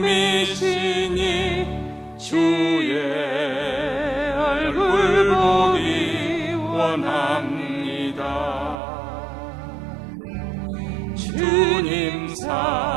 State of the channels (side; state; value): left; drops out; at 8.8 s